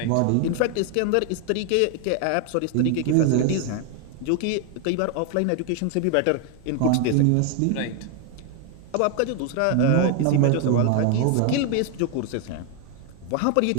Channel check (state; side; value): different; both; correlation 0.00